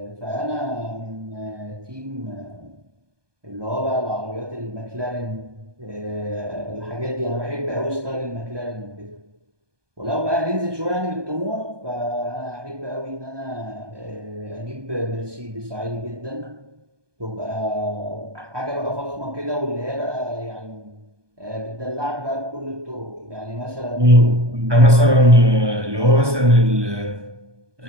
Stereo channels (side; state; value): left; late; 1.2 ms